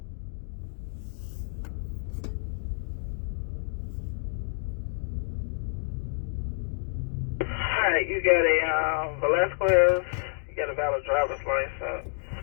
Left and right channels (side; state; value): right; silent; digital silence